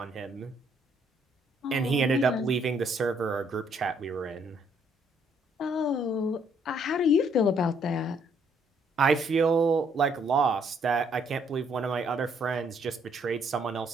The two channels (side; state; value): both; normal; correlation 0.68